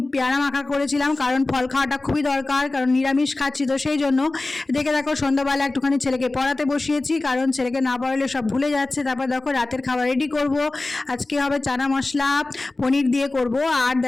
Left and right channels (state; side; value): quieter; right; 3.1 dB